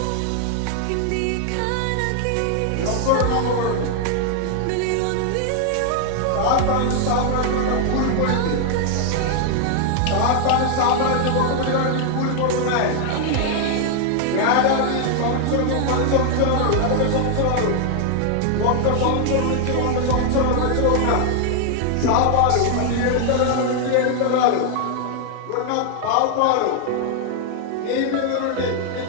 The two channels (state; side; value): different; both; correlation 0.00